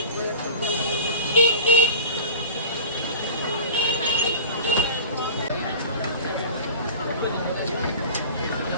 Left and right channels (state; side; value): inverted; both; correlation -0.36